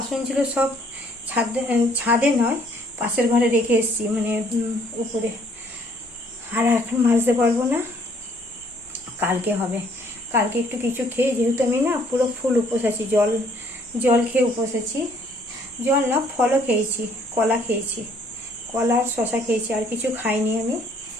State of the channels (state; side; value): normal; both; correlation 0.63